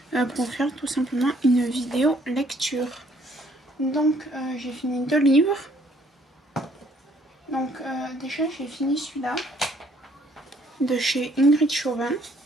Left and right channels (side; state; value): both; normal; correlation 0.64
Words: pour faire tout simplement une vidéo lecture. Donc j'ai fini 2 livres. Donc déjà j'ai fini celui-là de chez Ingrid Chauvin.